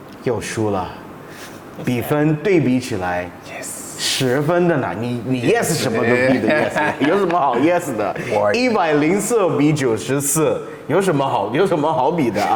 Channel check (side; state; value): both; identical; correlation 1.00